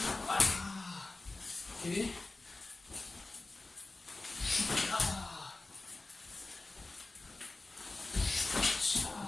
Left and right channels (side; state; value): right; quieter; 3.2 dB